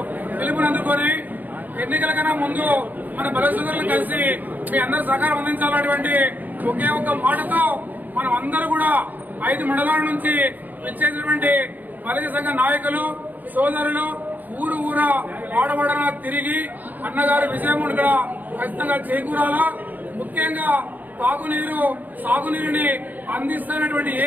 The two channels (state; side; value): late; left; 0.085 ms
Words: పిలుపునందుకొని ఎన్నికల కన్నా ముందు మన బల సోదరులు కలిసి మీ అందరూ సహకారం అందించాలనేటువంటి ఒకే ఒక మాటతో మనం అందరూ కూడా 5 మండలాల నుంచి విచ్చేసినటువంటి బలిజ సంఘ నాయకులు సోదరులు ఊరు వాడవాడన తిరిగి అన్నగారి విజయం ఇక్కడ ఖచ్చితంగా చేకూరాలా. ముఖ్యంగా తాగునీరు సాగునీరుని అందిస్తున్నటువంటి